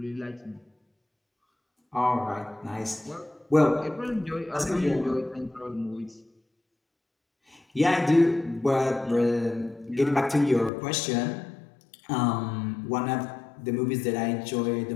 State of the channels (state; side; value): drops out; right; at 10.7 s